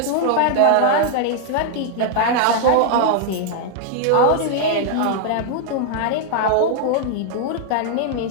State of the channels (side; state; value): both; different; correlation 0.00